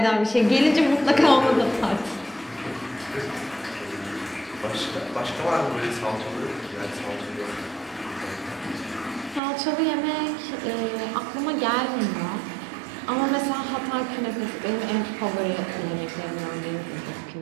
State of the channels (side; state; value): left; drops out; at 9.4 s